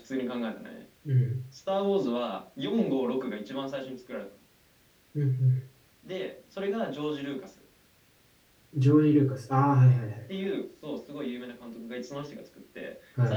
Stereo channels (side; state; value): both; identical; correlation 1.00